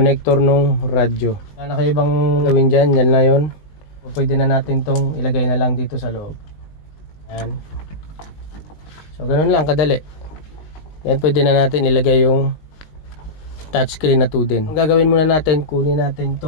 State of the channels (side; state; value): right; late; 19 ms